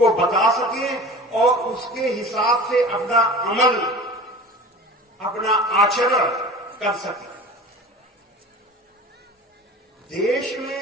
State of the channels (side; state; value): both; normal; correlation 0.38